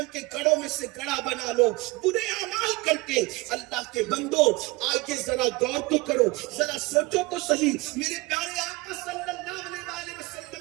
کے گڑھوں میں سے گڑھا بنا لو برے اعمال کر کے۔ اللہ کے بندو آگے ذرا غور تو کرو، ذرا سوچو تو صحیح، میرے پیارے آقا صلی اللہ علیہ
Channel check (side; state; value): left; quieter; 23.2 dB